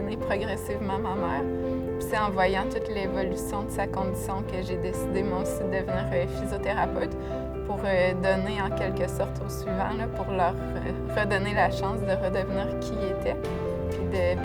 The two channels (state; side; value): identical; both; correlation 1.00